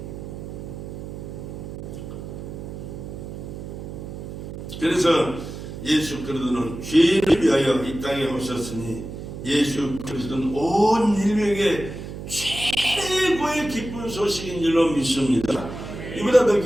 그래서 예수 그리스도는 죄인을 위하여 이 땅에 오셨으니 예수 그리스도는 온 인류에게 최고의 기쁜 소식인 줄로 믿습니다. 이보다 더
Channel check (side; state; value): right; noise; hum, 9 dB below the sound